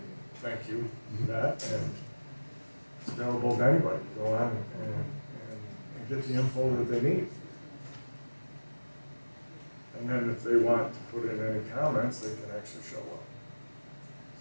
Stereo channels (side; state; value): both; inverted; correlation -1.00